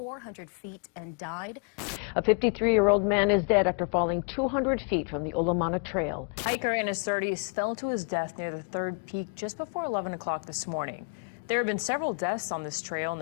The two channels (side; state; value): right; quieter; 38.9 dB